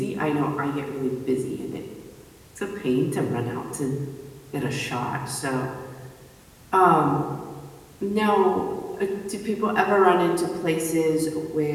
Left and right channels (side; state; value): both; identical; correlation 1.00